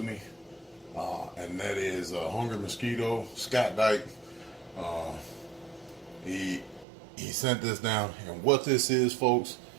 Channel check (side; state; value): left; drops out; at 6.9 s